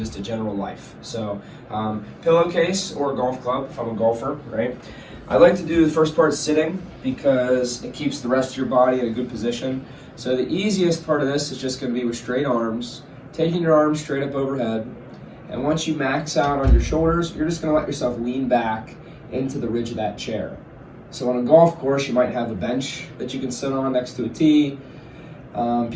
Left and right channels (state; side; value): identical; both; correlation 1.00